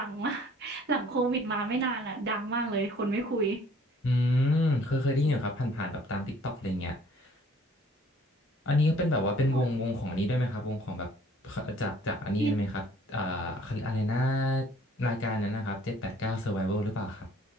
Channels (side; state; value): both; normal; correlation 0.56